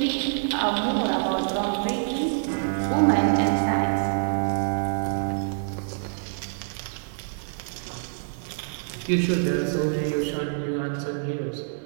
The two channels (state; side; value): silent; left; 61 dB below the other